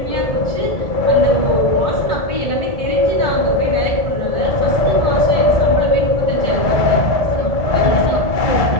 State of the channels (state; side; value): late; right; 1.7 ms